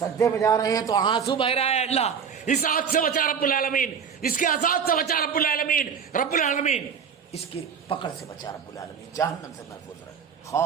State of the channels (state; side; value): quieter; left; 6.9 dB